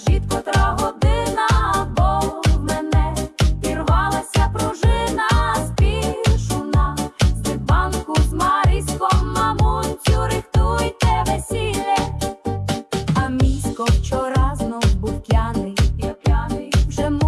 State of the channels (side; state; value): both; identical; correlation 1.00